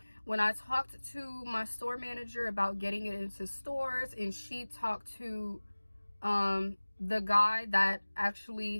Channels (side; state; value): both; inverted; correlation -1.00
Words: when I talked to my store manager about getting it into stores, and she talked to the guy that